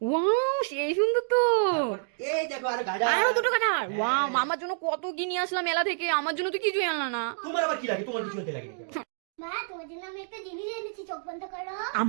ওয়াও সেই সুন্দর তো। এই দেখো আর গাডার। আরো দুটো গাডার। ওয়াও মামার জন্য কত কি নিয়ে আসলাম মেলা থেকে, আমার জন্য তো কিছুই আনলা না। তোমার আবার কি লাগে? তোমার কিছু হতে লাগে? মা তোমার জন্য আমি একটা জিনিস এনেছি, চোখ বন্ধ করো।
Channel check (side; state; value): left; silent; digital silence